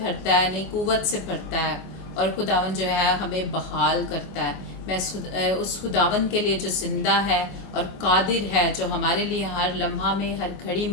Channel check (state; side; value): late; right; 27 ms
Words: भरता है, नई कुव्वत से भरता है, और खुदावन जो है हमें बहाल करता है। मैं उस खुदावन के लिए जो ज़िंदा है और कादिर है, जो हमारे लिए हर लम्हा में हर घड़ी